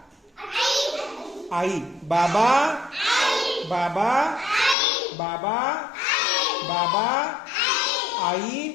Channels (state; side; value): drops out; right; at 4.8 s